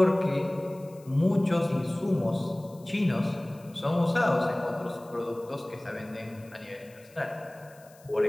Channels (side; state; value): left; noise; hiss, 27 dB below the sound